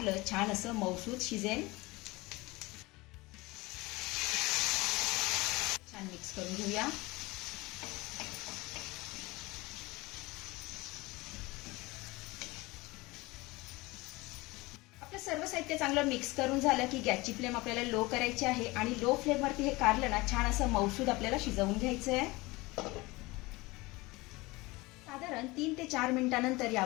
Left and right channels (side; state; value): right; quieter; 22.3 dB